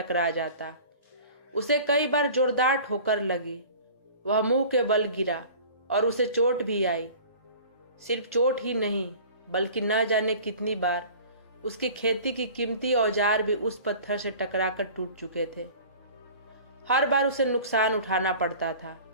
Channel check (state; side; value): inverted; both; correlation -0.43